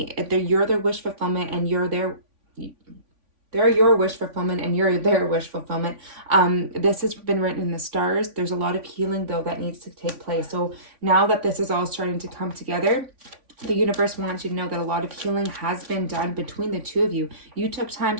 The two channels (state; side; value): late; left; 3.5 ms